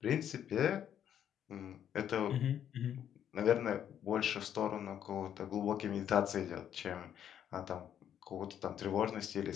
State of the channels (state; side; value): quieter; right; 9.7 dB